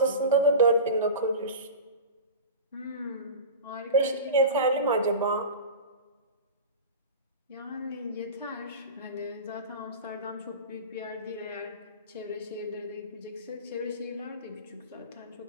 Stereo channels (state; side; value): inverted; both; correlation -0.30